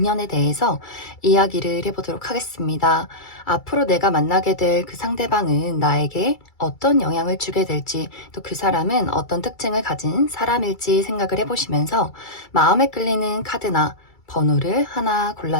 대해서 이야기를 해보도록 하겠습니다. 앞으로 내가 만나게 될 그 상대방은 나에게 어떤 영향을 주게 될지, 또 그 사람은 어떤 특징을 가진 사람일지 생각을 해보시면서 마음에 끌리는 카드나 번호를 하나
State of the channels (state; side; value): late; right; 2.3 ms